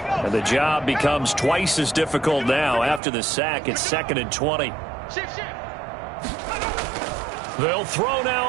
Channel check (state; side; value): drops out; left; at 3.0 s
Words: The job becomes twice as difficult now. After the sack, it's 2nd and 20. They'll throw now